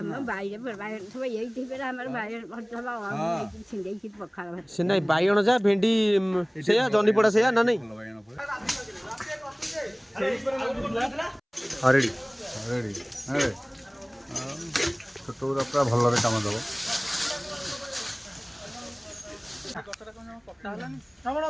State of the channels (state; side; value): identical; both; correlation 1.00